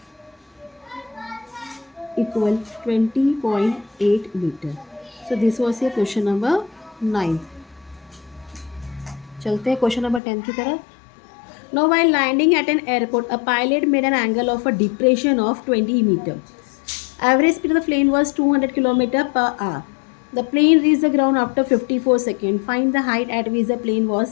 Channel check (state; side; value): drops out; right; at 10.2 s